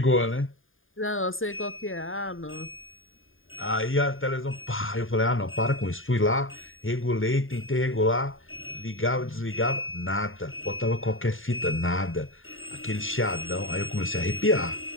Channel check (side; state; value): right; late; 0.59 ms